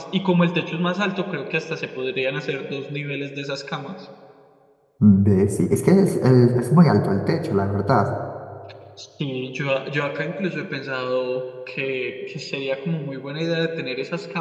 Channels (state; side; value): identical; both; correlation 1.00